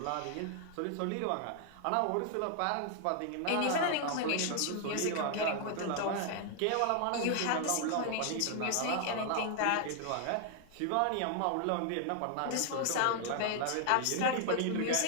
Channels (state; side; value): different; both; correlation 0.00